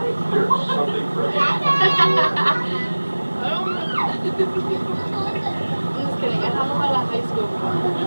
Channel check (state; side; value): inverted; both; correlation -1.00